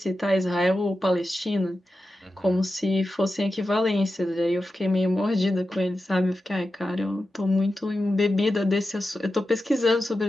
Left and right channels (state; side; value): normal; both; correlation 0.91